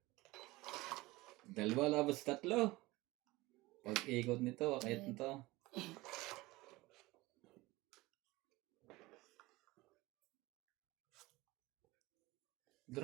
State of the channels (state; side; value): quieter; left; 20.5 dB